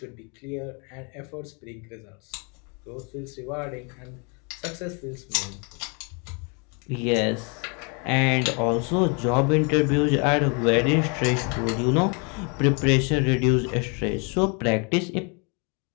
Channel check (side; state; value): right; quieter; 34.6 dB